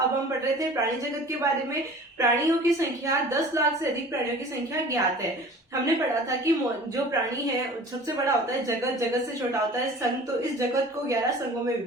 हम पढ़ रहे थे प्राणी जगत के बारे में। प्राणियों की संख्या 10 लाख से अधिक प्राणियों की संख्या ज्ञात है। हमने पढ़ा था कि जो प्राणी है सबसे बड़ा होता है जगत, जगत से छोटा होता है संघ। तो इस जगत को 11 संघों में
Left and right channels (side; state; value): both; normal; correlation 0.44